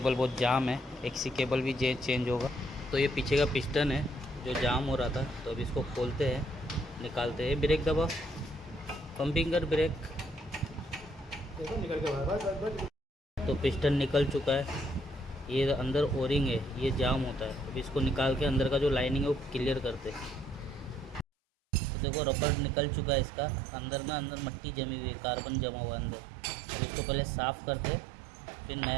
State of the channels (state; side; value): drops out; left; at 21.2 s